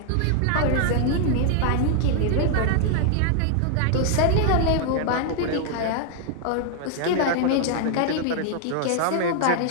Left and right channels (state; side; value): different; both; correlation 0.00